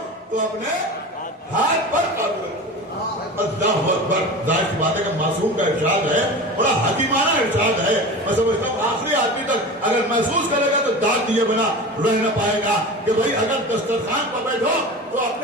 تو اپنے ہاتھ پر قابو رکھو. اللہ اکبر. ظاہر سی بات ہے کہ معصوم کا ارشاد ہے, بڑا حکیمانہ ارشاد ہے. میں سمجھتا ہوں آخری آدمی تک اگر محسوس کرے گا تو داد دیے بنا رہ نہ پائے گا کہ بھائی اگر دسترخوان پر بیٹھو تو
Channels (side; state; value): both; normal; correlation 0.31